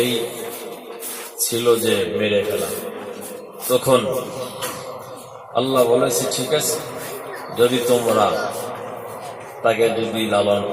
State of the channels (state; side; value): identical; both; correlation 1.00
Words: ছিল যে মেরে ফেলা। তখন আল্লাহ বলেছে, ঠিক আছে, যদি তোমরা তাকে যদি লালন